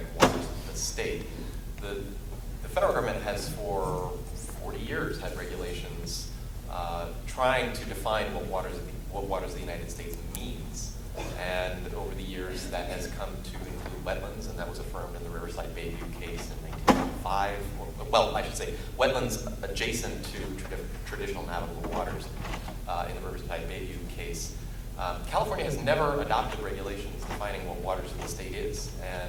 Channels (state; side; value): identical; both; correlation 1.00